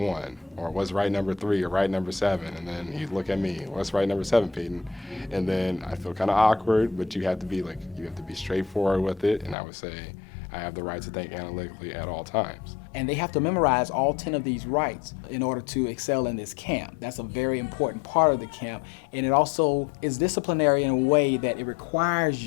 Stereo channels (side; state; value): right; drops out; at 9.6 s